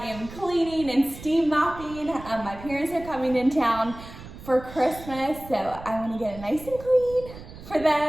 am cleaning and steam mopping. My parents are coming in town for Christmas, so I wanna get it nice and clean for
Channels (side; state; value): right; noise; rumble, 15 dB below the sound